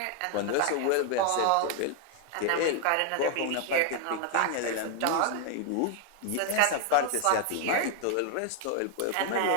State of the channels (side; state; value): both; different; correlation 0.00